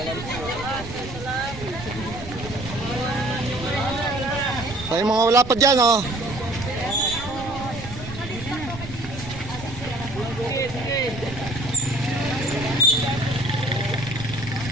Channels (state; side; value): noise; right; rumble, 11 dB below the sound